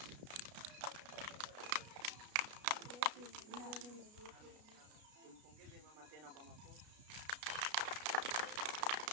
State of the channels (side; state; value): left; late; 33 ms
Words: Tumpongeze mama tena kwa makofi.